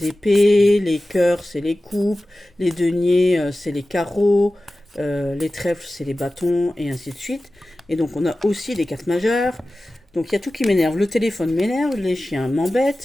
épées, les cœurs, c'est les coupes, les deniers, c'est les carreaux, les trèfles, c'est les bâtons, et ainsi de suite. Et donc on a aussi des cartes majeures. Donc il y a tout qui m'énerve. Le téléphone m'énerve, les chiens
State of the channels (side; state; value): both; normal; correlation 0.96